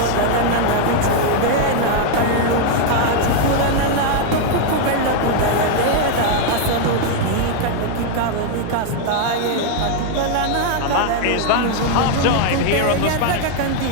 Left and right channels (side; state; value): both; different; correlation 0.00